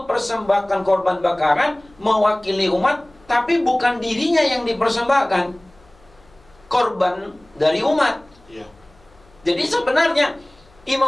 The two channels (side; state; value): left; noise; hum, 30 dB below the sound